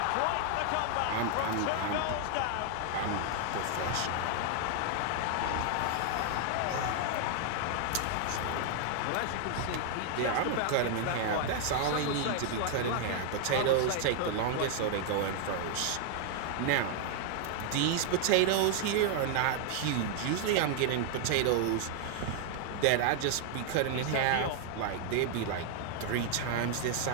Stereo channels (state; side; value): different; both; correlation 0.00